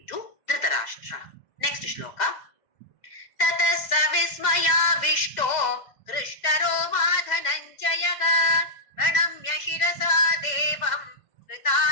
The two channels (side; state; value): right; late; 2.0 ms